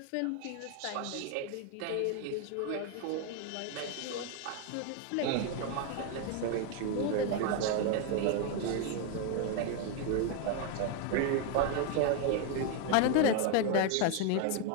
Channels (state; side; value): different; both; correlation 0.01